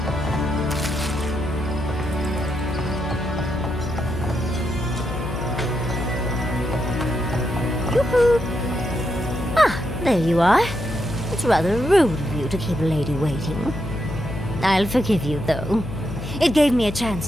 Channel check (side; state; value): left; noise; hum, 8 dB below the sound